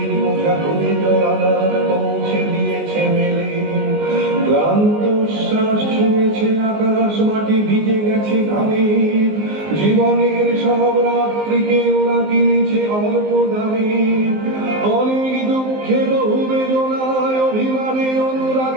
বোঝা করে রানার পৌঁছে দিয়েছে মেলে, ক্লান্ত শ্বাস ছুঁয়েছে আকাশ মাটি ভিজে গেছে ঘামে, জীবনের সব রাত্রিকে ওরা কিনেছে অল্প দামে, অনেক দুঃখে বহু বেদনায় অভিমানে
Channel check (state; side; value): late; left; 19 ms